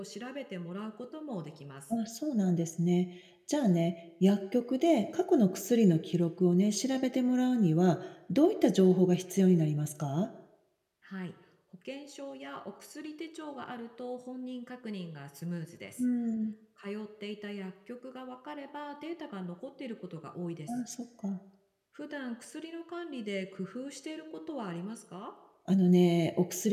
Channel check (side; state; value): both; identical; correlation 1.00